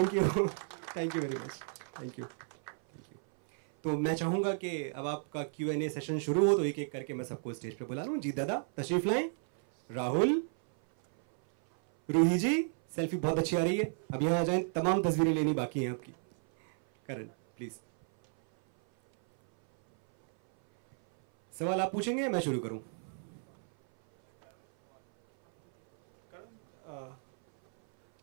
you very much, thank you. तो मैं चाहूंगा कि अब आपका Q&A सेशन शुरू हो, तो एक एक करके मैं सबको स्टेज पे बुला लूं. जीत दादा तशरीफ लाएं. राहुल, रूही जी, सेल्फी बहुत अच्छी आ रही है, अब यहां आ जाएं, तमाम तस्वीरें लेनी बाकी हैं आपकी. करण प्लीज. सवाल आप पूछेंगे, मैं शुरू करूं?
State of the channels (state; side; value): silent; left; 56 dB below the other